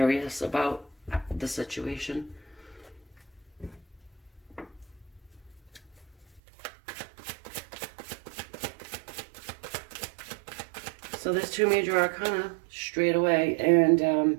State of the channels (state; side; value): drops out; left; at 6.4 s